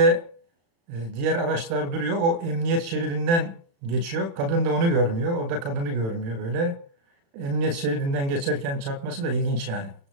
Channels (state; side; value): late; left; 36 ms